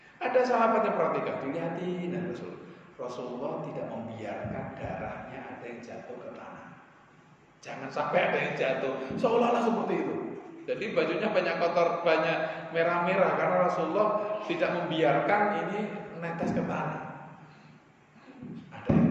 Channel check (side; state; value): both; identical; correlation 1.00